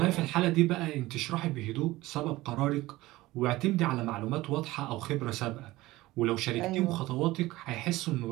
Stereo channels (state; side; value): quieter; left; 18.4 dB